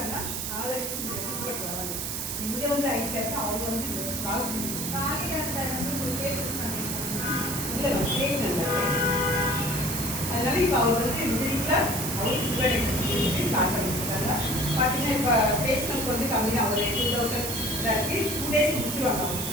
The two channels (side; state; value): right; noise; hiss, 3 dB below the sound